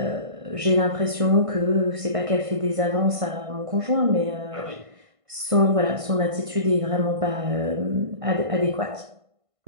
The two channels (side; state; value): left; late; 1.5 ms